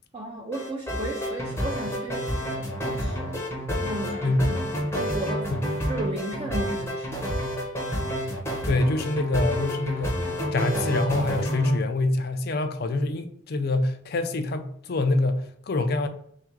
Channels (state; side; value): normal; both; correlation 0.63